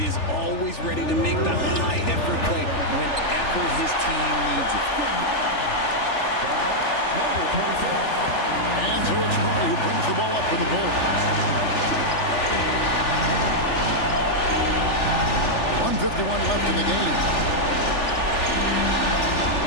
is always ready to make the high-effort play whenever his team needs it. And so it's Murray who brings the ball up for the Bulls. 1:51 left in the game.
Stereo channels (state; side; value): late; right; 3.4 ms